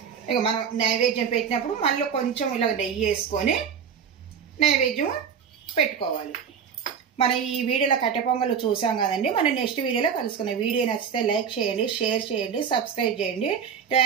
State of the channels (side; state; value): left; quieter; 7.2 dB